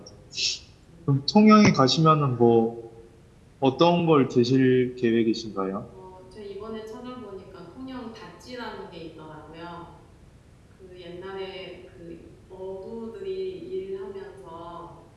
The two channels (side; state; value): both; identical; correlation 1.00